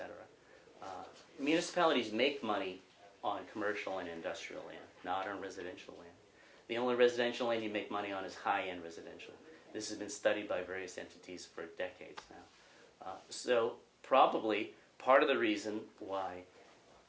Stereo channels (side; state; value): both; identical; correlation 1.00